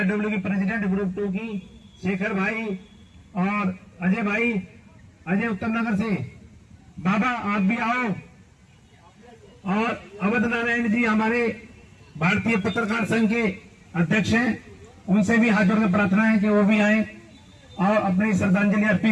की प्रेसिडेंट ग्रुप 2 की शेखर भाई और अजय भाई, अजय उत्तम नगर से, बाबा आप भी आओ। और अवध नारायण जी हमारे भारतीय पत्रकार संघ के अध्यक्ष हैं, उनसे भी हाथ जोड़कर प्रार्थना है कि वो भी आए और अपनी श्रद्धांजलि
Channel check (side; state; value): both; identical; correlation 1.00